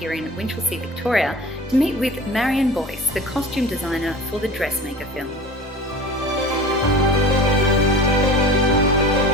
in Winchelsea, Victoria, to meet with Marion Boyce, the costume designer for the Dressmaker film.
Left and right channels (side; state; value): both; normal; correlation 0.38